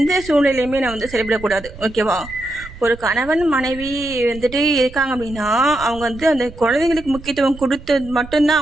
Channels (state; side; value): noise; right; rumble, 16 dB below the sound